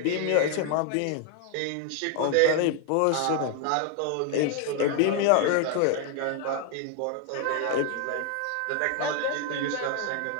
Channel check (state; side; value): different; both; correlation 0.00